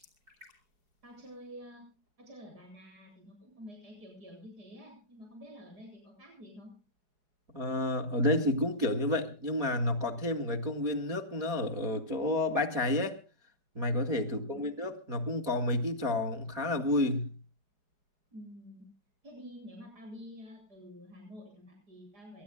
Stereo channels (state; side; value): late; left; 4.8 ms